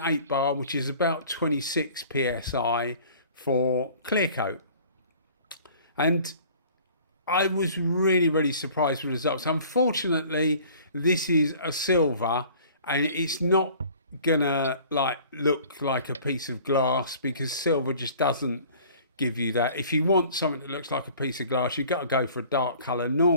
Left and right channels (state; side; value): inverted; both; correlation -0.49